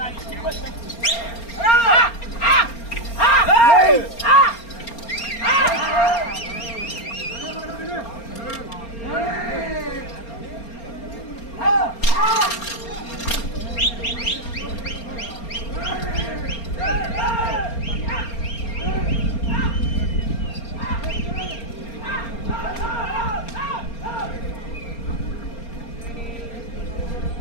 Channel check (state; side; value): late; right; 4.3 ms